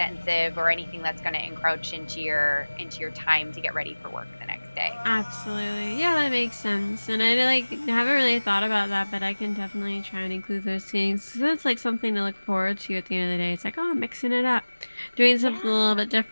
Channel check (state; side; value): inverted; both; correlation -1.00